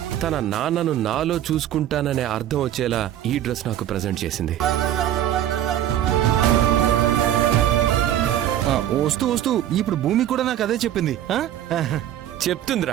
తన నాన్నను నాలో చూసుకుంటాననే అర్థం వచ్చేలా ఈ డ్రెస్ నాకు ప్రజెంట్ చేసింది. వస్తూ వస్తూ ఇప్పుడు భూమి కూడా నాకు అదే చెప్పింది.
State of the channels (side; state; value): left; quieter; 11.7 dB